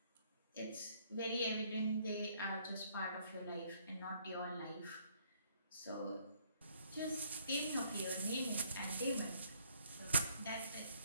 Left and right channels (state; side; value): inverted; both; correlation -0.63